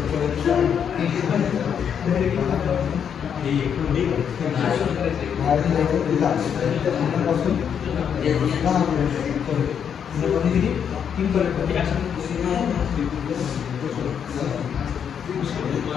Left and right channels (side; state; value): right; quieter; 7.9 dB